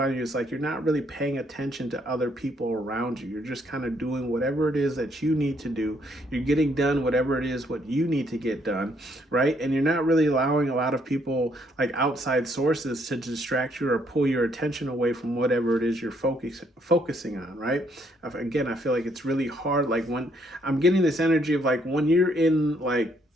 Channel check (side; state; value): both; normal; correlation 0.70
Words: you is like you're not really paying attention to other people around you. You're just kind of doing whatever it is that you need to do. You're getting done whatever it is what you need to get done, right? And you're not really allowing a lot of people, like outside sources, to distract you or pull your attention away from whatever it is you're focusing on, right? Again, I feel like it's really hard. Like when I'm getting this energy of like when you're in like